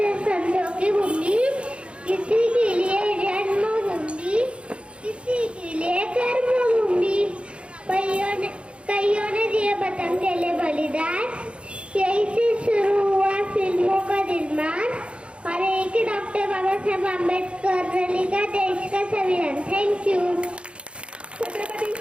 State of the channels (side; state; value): left; late; 0.058 ms